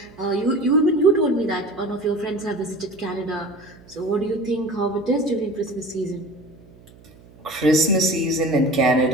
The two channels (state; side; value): noise; right; hum, 24 dB below the sound